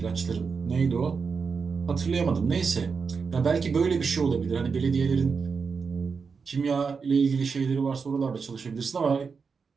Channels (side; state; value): left; quieter; 5.4 dB